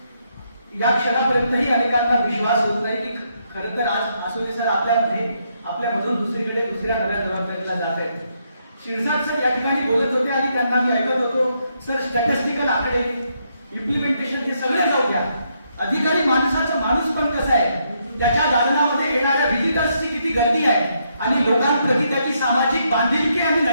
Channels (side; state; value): both; inverted; correlation -0.76